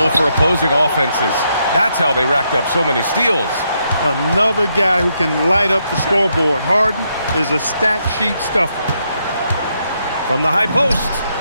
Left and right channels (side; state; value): both; inverted; correlation -0.78